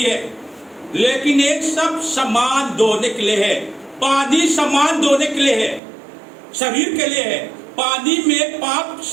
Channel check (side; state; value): left; drops out; at 5.8 s